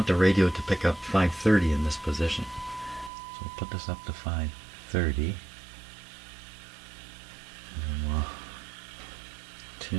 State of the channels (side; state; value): left; drops out; at 3.1 s